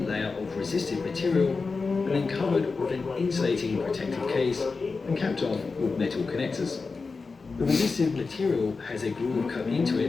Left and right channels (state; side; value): quieter; right; 4.3 dB